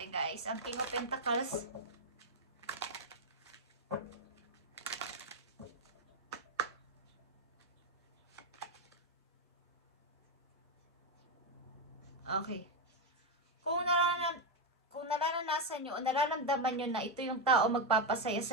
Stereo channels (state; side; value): normal; both; correlation 0.05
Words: guys. Ang King of Pentacles. Okay. Kung nararanasan nyo o nararamdaman nyo na ito yung tao magpapasaya